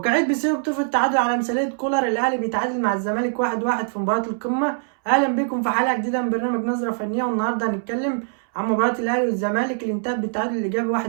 بيصير بطوف التعادل على مثالية كولر. الأهلي بيتعادل مع الزمالك 1-1 في مباراة القمة. أهلا بكم في حلقة جديدة من برنامج نظرة فنية، والنهاردة هنتكلم عن مباراة الأهلي والزمالك اللي انتهت بالتعادل الإيجابي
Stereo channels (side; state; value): left; silent; 64 dB below the other